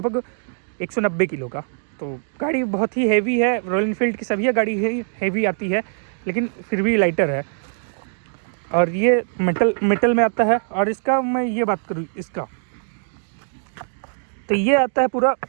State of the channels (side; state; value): left; silent; digital silence